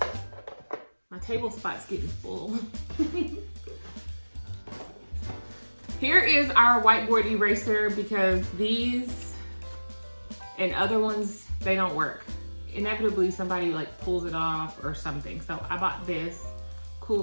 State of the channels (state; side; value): inverted; both; correlation -1.00